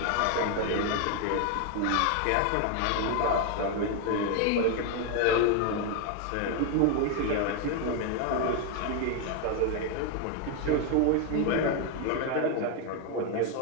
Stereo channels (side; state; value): both; different; correlation 0.01